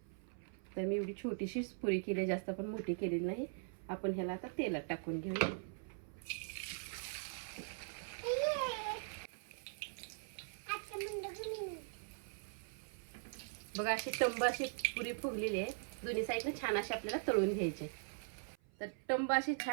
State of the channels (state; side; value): silent; left; 50 dB below the other